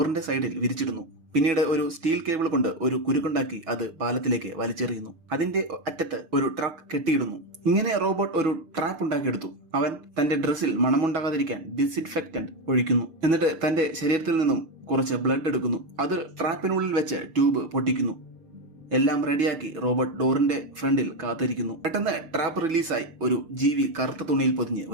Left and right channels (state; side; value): late; left; 6.6 ms